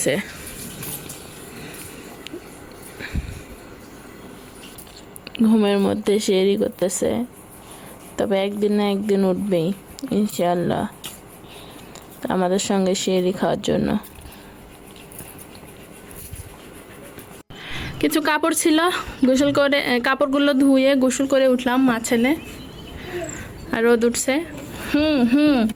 ঘুমের মধ্যে সেহরি করতেছে, তবে একদিন না একদিন উঠবেই ইনশাআল্লাহ আমাদের সঙ্গে সেহরি খাওয়ার জন্য। কিছু কাপড় ছিল, গোসল করে কাপড়গুলো ধুয়ে গোসল করে উঠলাম মা ছেলে। আর রোদ উঠছে।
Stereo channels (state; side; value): identical; both; correlation 1.00